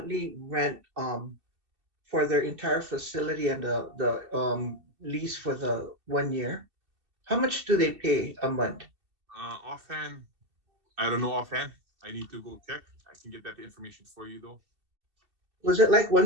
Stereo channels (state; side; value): late; left; 2.7 ms